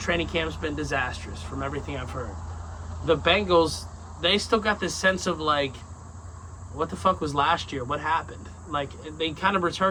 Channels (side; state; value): both; identical; correlation 1.00